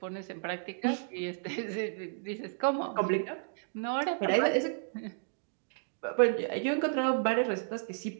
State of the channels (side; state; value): left; silent; digital silence